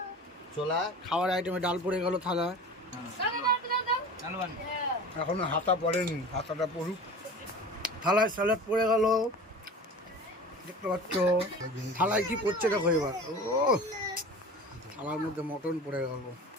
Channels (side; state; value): both; normal; correlation 0.37